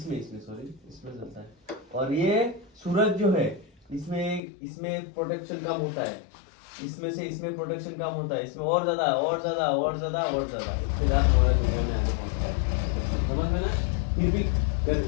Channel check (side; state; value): right; drops out; at 4.4 s